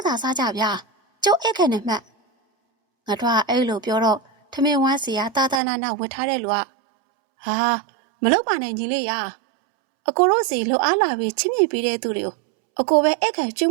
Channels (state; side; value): drops out; left; at 5.6 s